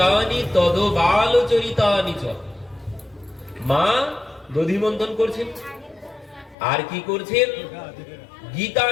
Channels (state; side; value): drops out; right; at 6.6 s